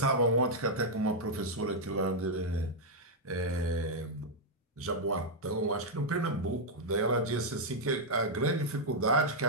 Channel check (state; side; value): normal; both; correlation -0.03